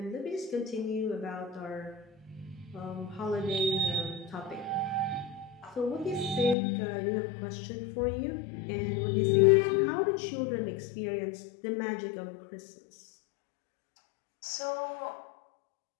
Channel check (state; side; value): drops out; right; at 6.6 s